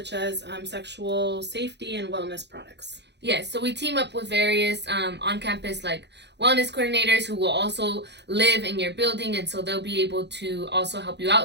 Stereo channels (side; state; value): left; late; 0.50 ms